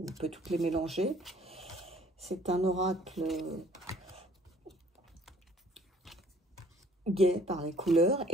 peut toutes les mélanger. C'est un oracle gai par les couleurs,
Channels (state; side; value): normal; both; correlation 0.56